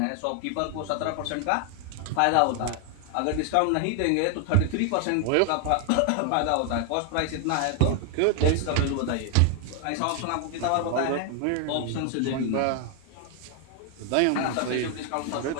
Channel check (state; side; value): different; both; correlation 0.00